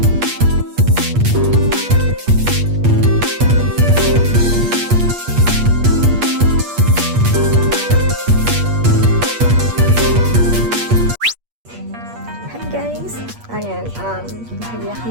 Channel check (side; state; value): left; late; 8.4 ms